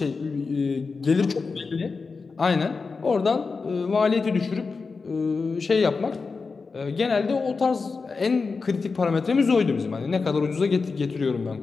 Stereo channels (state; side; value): quieter; right; 4.5 dB